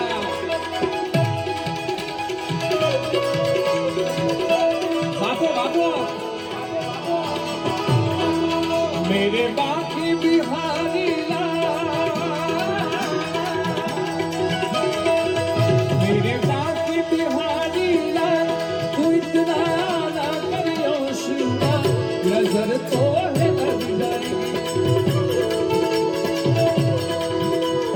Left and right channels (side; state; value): both; identical; correlation 1.00